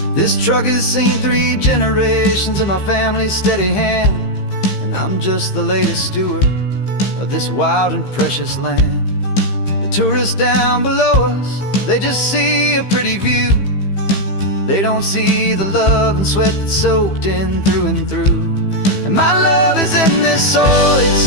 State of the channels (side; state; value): right; late; 15 ms